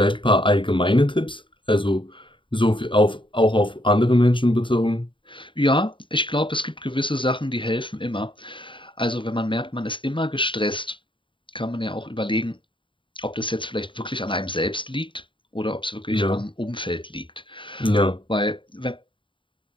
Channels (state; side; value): late; right; 0.24 ms